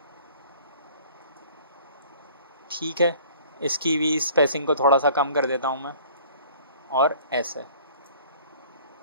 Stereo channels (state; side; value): inverted; both; correlation -0.51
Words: ठीक है। इसकी भी स्पेसिंग को थोड़ा सा कम कर देता हूँ मैं, और ऐसे।